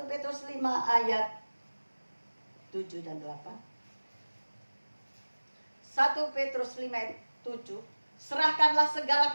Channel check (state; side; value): inverted; both; correlation -1.00